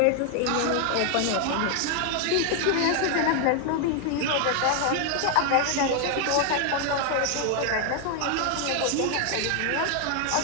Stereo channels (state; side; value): different; both; correlation 0.00